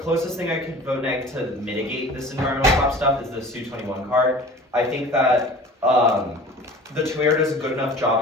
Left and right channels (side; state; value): both; normal; correlation 0.42